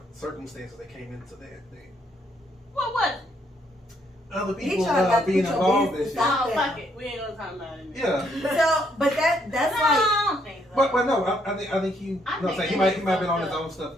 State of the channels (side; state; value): both; normal; correlation 0.71